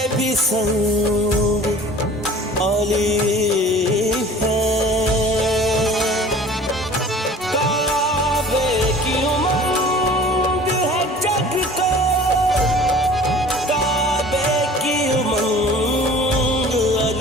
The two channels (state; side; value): normal; both; correlation 0.46